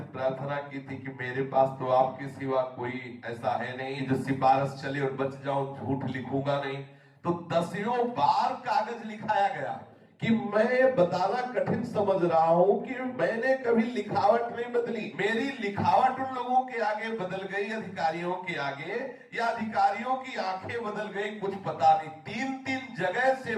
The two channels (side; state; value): both; identical; correlation 1.00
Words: प्रार्थना की थी कि मेरे पास तो आपके सिवा कोई ऐसा है नहीं जो सिफारिश चले और बच जाओ, झूठ लिखूंगा नहीं। तो 10 बार कागज लिखाया गया कि मैं बताना कठिन समझ रहा हूं कि मैंने कभी लिखावट नहीं बदली। मेरी लिखावट उन लोगों के आगे बदल गई, अधिकारियों के आगे, या अधिकारियों की आंखें बदल गई, कुछ पता नहीं। 3 जगह से